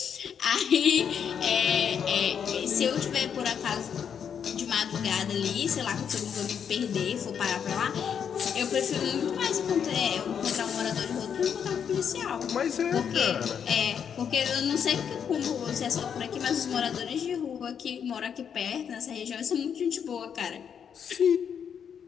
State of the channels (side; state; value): right; quieter; 7.7 dB